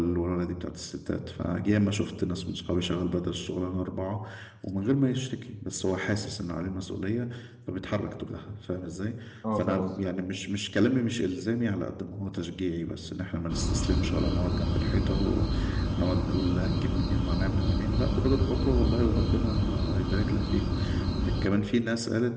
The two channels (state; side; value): identical; both; correlation 1.00